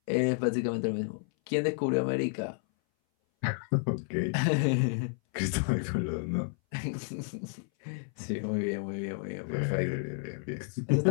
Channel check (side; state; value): right; silent; 57 dB below the other